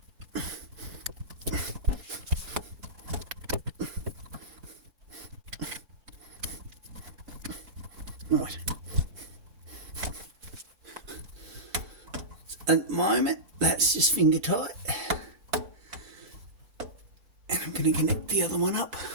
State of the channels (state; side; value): late; left; 5.0 ms